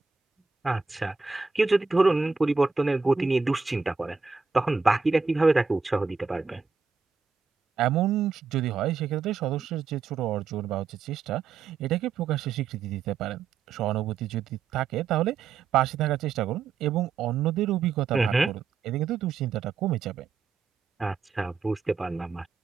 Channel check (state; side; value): quieter; left; 5.3 dB